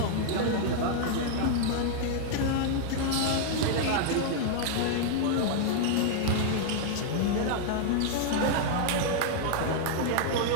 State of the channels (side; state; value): both; different; correlation 0.00